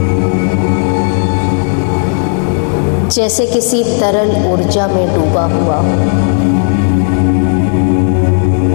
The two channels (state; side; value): silent; right; 61 dB below the other